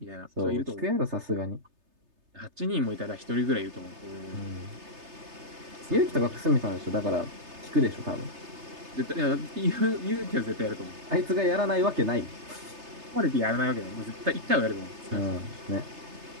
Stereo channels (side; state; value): left; late; 3.3 ms